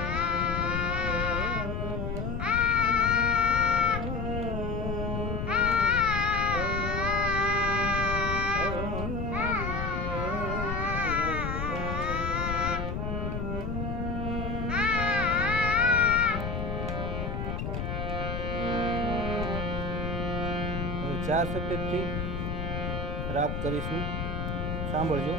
ચાર સફેદથી રાગ કરીશું, સાંભળજો.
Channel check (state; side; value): noise; left; rumble, 3 dB below the sound